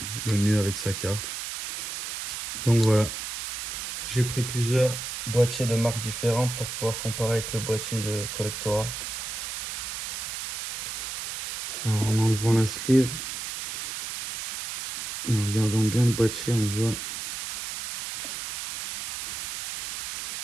mieux avec sa carte. Donc voilà, j'ai pris plusieurs boîtiers de marques différentes pour pouvoir comparer avec le boîtier de Collectora. Alors en enlevant la sleeve et en regardant bien le boîtier, on voit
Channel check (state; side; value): noise; right; hiss, 6 dB below the sound